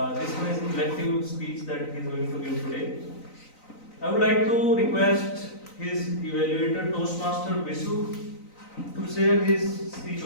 This one is elective speech that he is going to give today. I would like to request his evaluator, Toastmaster Visu, to share his speech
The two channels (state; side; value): late; right; 3.9 ms